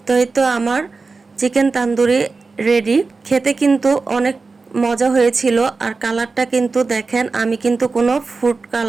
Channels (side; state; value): left; quieter; 4.1 dB